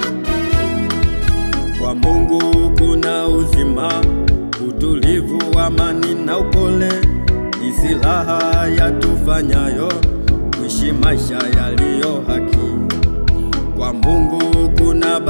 Kwa Mungu kuna uzima, utulivu, amani na upole, ni silaha yatufanyayo kuishi maisha yaliyo haki. Kwa Mungu kuna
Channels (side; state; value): both; inverted; correlation -1.00